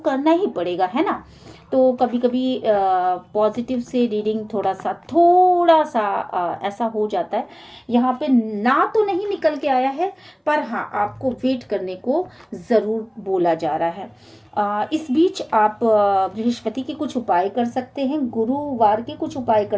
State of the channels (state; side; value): identical; both; correlation 1.00